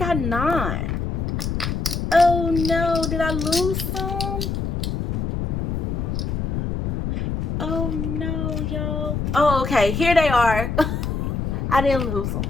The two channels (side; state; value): left; noise; rumble, 1 dB below the sound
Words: 9. Oh no, did I lose some? Oh no, y'all. Oh, okay, here they are. I didn't lose them.